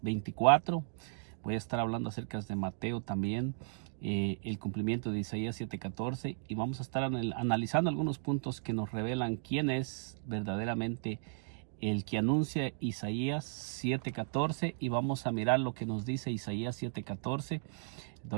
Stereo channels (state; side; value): silent; left; digital silence